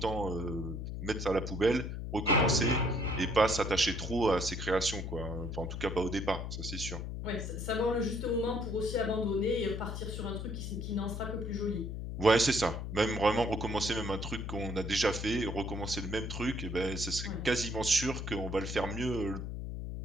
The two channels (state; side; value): noise; left; hum, 5 dB below the sound